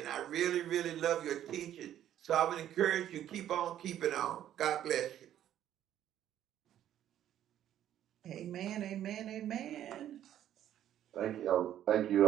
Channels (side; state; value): left; quieter; 11.3 dB